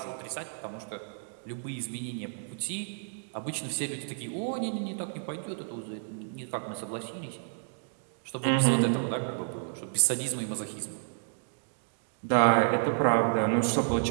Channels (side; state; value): left; silent; digital silence